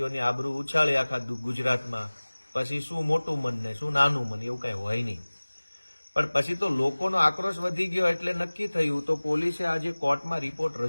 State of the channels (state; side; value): inverted; both; correlation -1.00